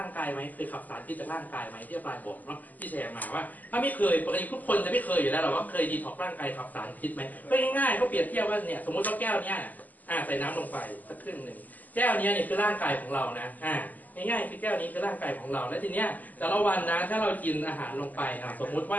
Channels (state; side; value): late; right; 0.081 ms